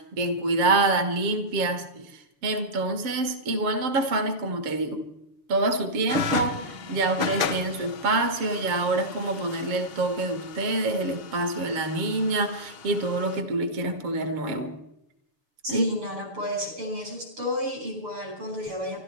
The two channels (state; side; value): late; left; 6.9 ms